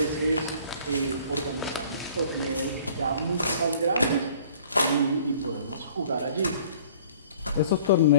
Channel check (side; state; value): both; inverted; correlation -0.53